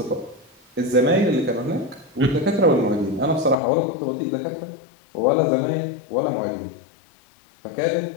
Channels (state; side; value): drops out; right; at 3.6 s